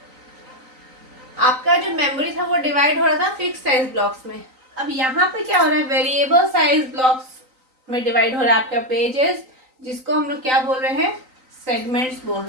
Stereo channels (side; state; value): left; late; 3.9 ms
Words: आपका जो मेमोरी था वो डिवाइड हो रहा था फिक्स साइज ब्लॉक्स में। अब यहाँ पे क्या हो रहा है, वेरिएबल साइज ब्लॉक्स में डिवाइड हो रहा है आपका पेजेस, जिसको हम लोग क्या बोल रहे हैं, सेगमेंट्स बोल